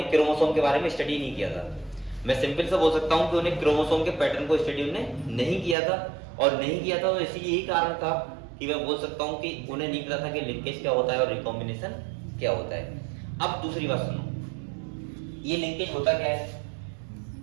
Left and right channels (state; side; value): drops out; left; at 5.8 s